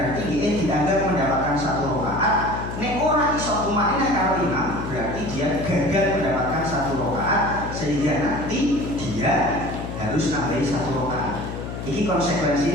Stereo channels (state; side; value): noise; left; hum, 7 dB below the sound